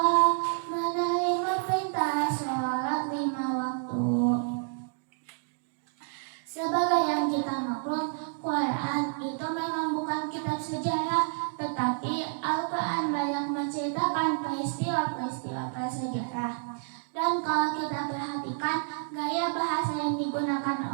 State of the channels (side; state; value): left; silent; digital silence